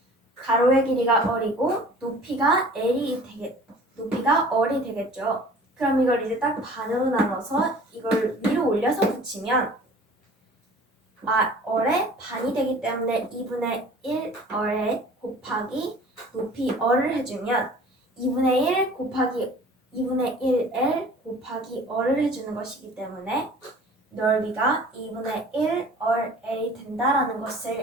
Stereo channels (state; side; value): normal; both; correlation 0.47